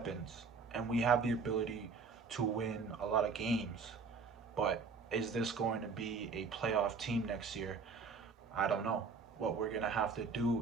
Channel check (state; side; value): quieter; left; 4.9 dB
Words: and we have the ability to win a lot of games. But is this going to be a playoff team next year? I don't know. What we're gonna have to